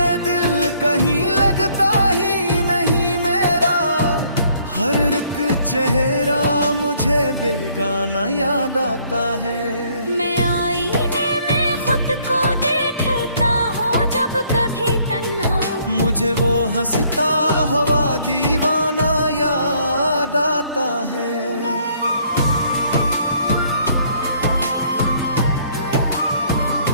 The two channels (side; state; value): both; inverted; correlation -0.64